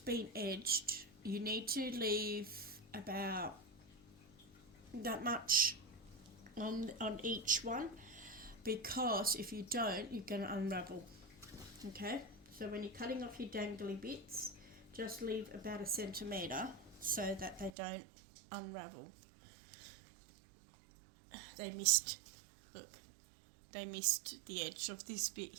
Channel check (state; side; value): drops out; left; at 17.7 s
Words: edged, you need to leave about that much on each one, because if you don't, you're going to unravel. Okay, so when you're cutting off your dangly bits, just leave about 1 centimetre so that they don't unravel. They missed the edge of this bit